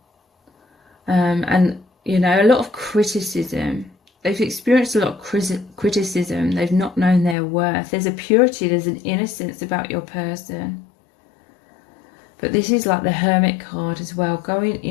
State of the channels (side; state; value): right; drops out; at 7.4 s